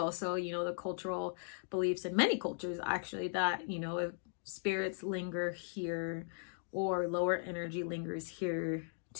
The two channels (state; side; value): silent; right; digital silence